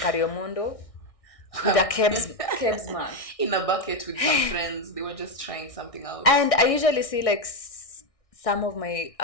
with a Kebs mark. In a bucket with some friends, they were just trying something out. And I usually see like some of my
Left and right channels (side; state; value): right; late; 1.6 ms